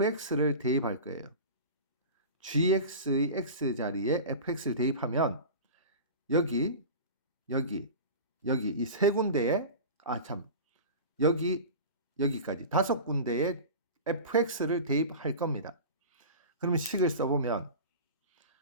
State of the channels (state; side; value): inverted; both; correlation -0.32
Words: 대입할 거예요. gx의 x 자리에 fx를 대입하면 여기 이 세 군데에 여기까지 5군데에 fx를 대입할 겁니다. 그러면 식을 써보면